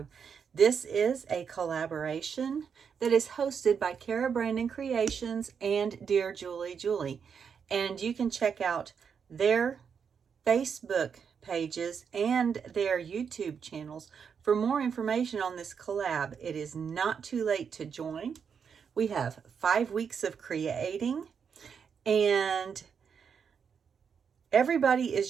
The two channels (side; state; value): left; quieter; 6.7 dB